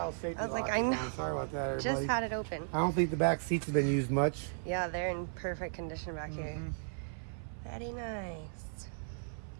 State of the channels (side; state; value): left; silent; 54 dB below the other